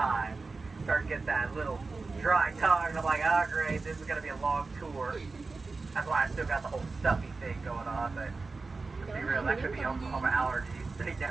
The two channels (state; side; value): quieter; left; 3.9 dB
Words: Start to get that little dry tongue, and I'm like, oh great, this is going to be a long tour. That's why I still got the whole stuffy thing going on, but to be real, that could be Oklahoma allergies. They